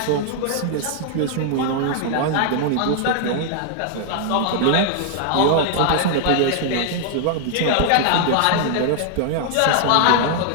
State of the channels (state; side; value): different; both; correlation -0.01